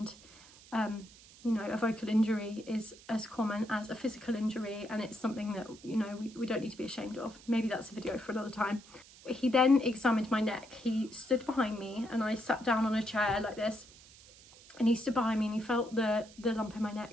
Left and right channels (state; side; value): noise; right; hiss, 22 dB below the sound